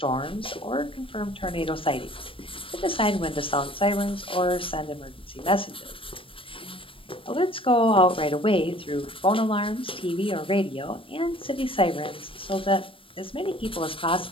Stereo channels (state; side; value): late; right; 0.26 ms